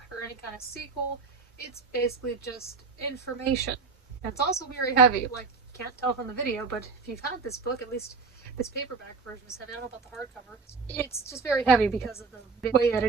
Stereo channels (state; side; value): quieter; left; 4.6 dB